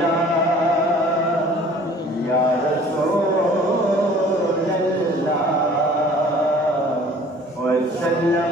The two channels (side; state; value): both; normal; correlation 0.50